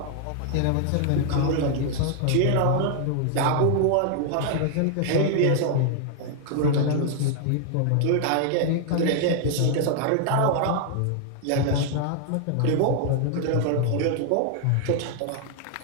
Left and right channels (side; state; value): both; different; correlation 0.00